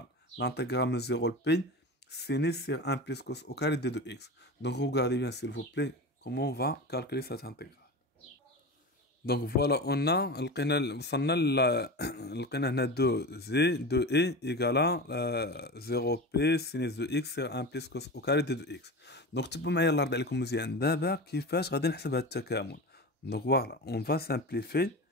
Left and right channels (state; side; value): normal; both; correlation 0.27